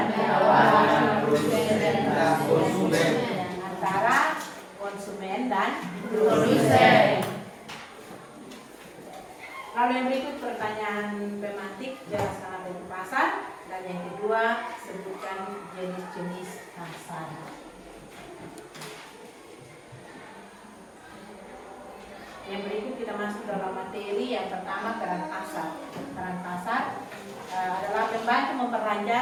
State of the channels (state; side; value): identical; both; correlation 1.00